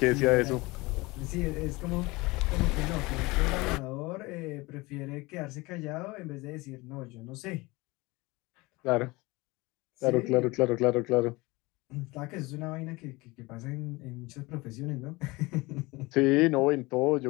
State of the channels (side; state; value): right; quieter; 22.9 dB